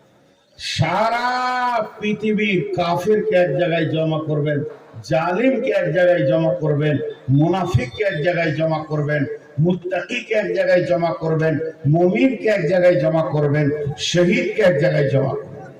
সারা পৃথিবীর কাফিরকে এক জায়গায় জমা করবেন, জালিমকে এক জায়গায় জমা করবেন, মুনাফিককে এক জায়গায় জমা করবেন, মুত্তাকিকে এক জায়গায় জমা করবেন, মুমিনকে এক জায়গায় জমা করবেন, শহীদকে এক জায়গায় জমা করবেন।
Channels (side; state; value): both; identical; correlation 1.00